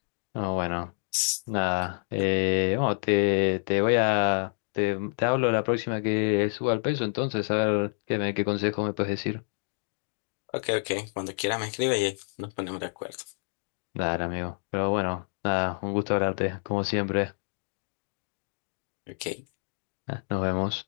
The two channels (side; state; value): right; silent; 59 dB below the other